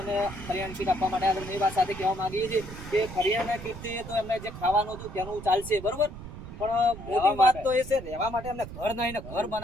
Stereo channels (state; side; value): noise; right; rumble, 12 dB below the sound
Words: અને કરિયાની કીટ આપવા માટે આવ્યા. એ વાત સાથે કહેવા માંગીએ છીએ કે કરિયાના કીટથી તો એમને જે ખાવાનું હતું તેનું ચાલશે, બરોબર. પણ મોટી વાત તો એ છે, રહેવા માટે અમને ઘર નહીં ને ઘર